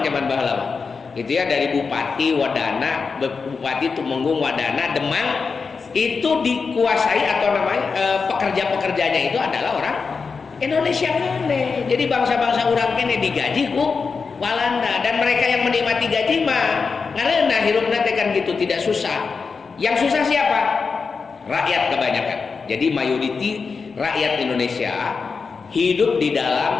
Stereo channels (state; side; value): quieter; right; 5.0 dB